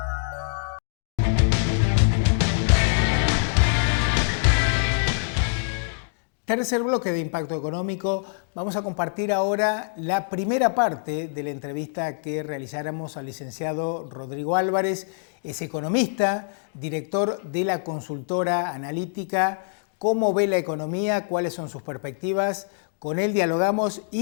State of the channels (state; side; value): silent; right; digital silence